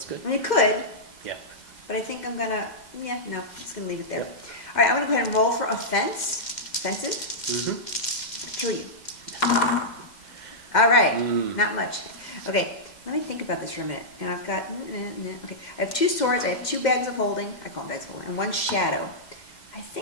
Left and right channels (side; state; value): right; late; 2.1 ms